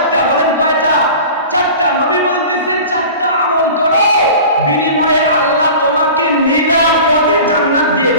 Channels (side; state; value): both; inverted; correlation -0.38